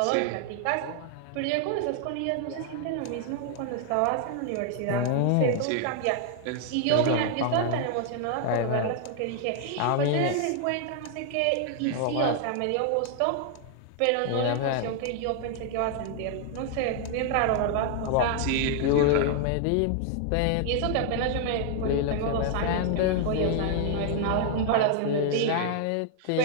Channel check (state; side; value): different; both; correlation 0.00